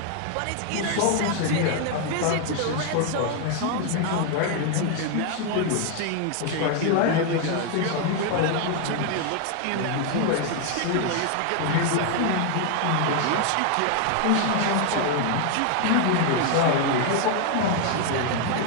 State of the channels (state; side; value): different; both; correlation 0.00